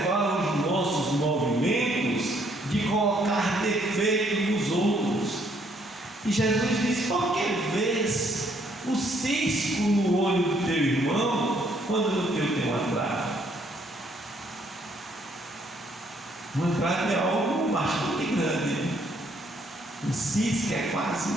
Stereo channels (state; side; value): normal; both; correlation 0.68